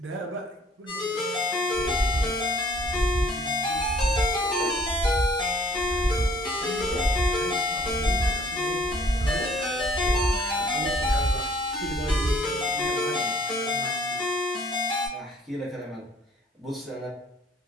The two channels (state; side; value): normal; both; correlation 0.56